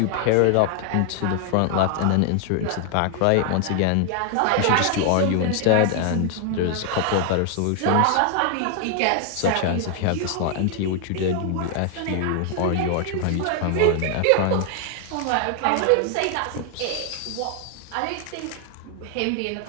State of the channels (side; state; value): both; different; correlation 0.00